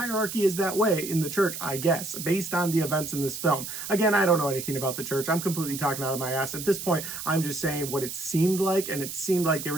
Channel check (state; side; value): noise; right; hiss, 7 dB below the sound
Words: is that way in the church, I guess, based on the events in this film. Again, I don't know anything about the church. I'm completely talking out of my ass. At this point, I'm just saying what it seemed like, and it seemed like they